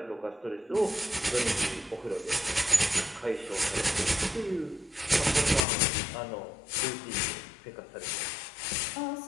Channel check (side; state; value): right; drops out; at 5.7 s